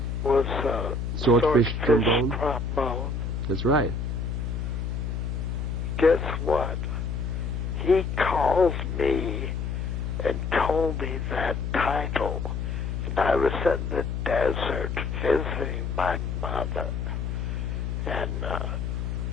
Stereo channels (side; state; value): left; noise; hum, 2 dB below the sound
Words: Was Swordfish Trombone? Trombone. That's right. Guess what? He called me and told me that title. And I was in the desert visiting my mother. And